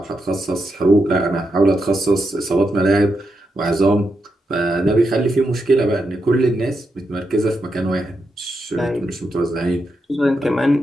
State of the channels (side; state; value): both; normal; correlation 0.84